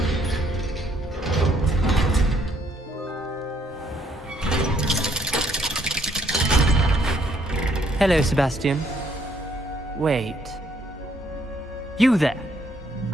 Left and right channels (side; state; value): both; normal; correlation 0.69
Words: Hello, Sebastian. Wait. You there?